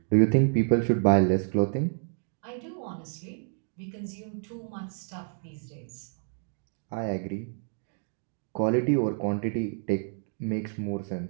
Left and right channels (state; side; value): silent; left; 56 dB below the other